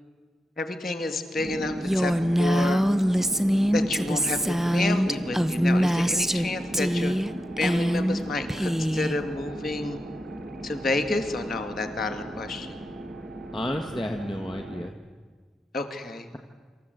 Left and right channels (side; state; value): both; normal; correlation 0.88